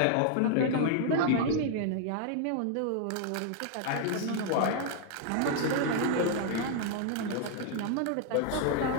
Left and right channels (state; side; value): different; both; correlation 0.00